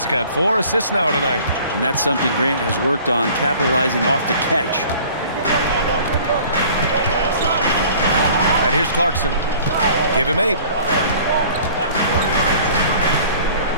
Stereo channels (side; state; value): both; inverted; correlation -0.49